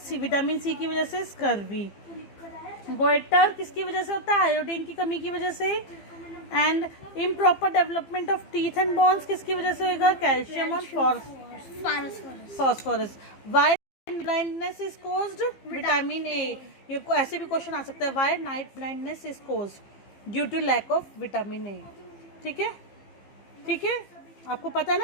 vitamin C की वजह से स्कर्वी। गोइटर किसकी वजह से होता है, आयोडीन की कमी की वजह से। And improper development of teeth and bones किसकी वजह से होगा, कैल्शियम और phosphorus. Why blindness is caused, vitamin A. ये ऐसे भी क्वेश्चन आ सकता है, why night blindness is caused, due to lack of vitamin A. ठीक है, ठीक है, आपको पता है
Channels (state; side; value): late; right; 15 ms